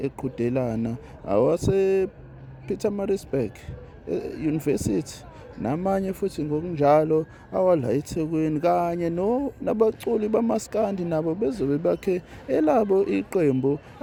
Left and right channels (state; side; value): identical; both; correlation 1.00